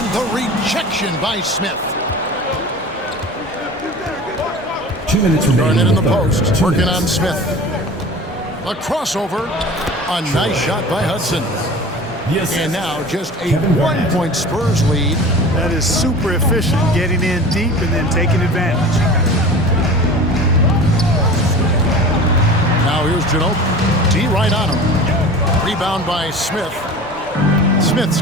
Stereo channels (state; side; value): normal; both; correlation 0.38